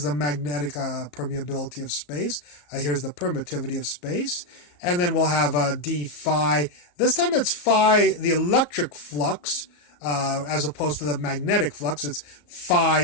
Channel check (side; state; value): right; late; 34 ms